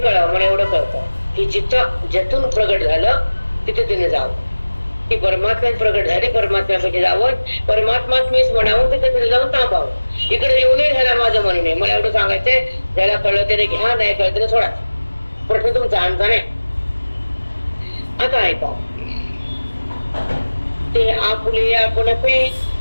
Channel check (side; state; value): both; inverted; correlation -1.00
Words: मला एवढं कळतं की जिथं ज्यातून प्रगट झालं तिथे तिने जावं. ती परमात्म्यात प्रगट झाली, परमात्म्यामध्ये जावं, परमात्मात मीच म्हणावं, तिथे तिथे जाऊन थांबावं. इकडे येऊ नये ह्याला माझं म्हणून नाही. मला एवढं सांगायचंय, ज्याला कळलं त्याने घ्या, नाही कळलं त्याने सोडा. प्रश्न तुमचा आमचा नाही. आता ऐका, ते आपुले आपण पे